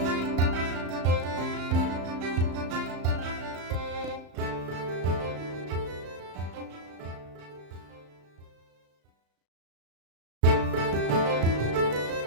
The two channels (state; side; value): late; left; 35 ms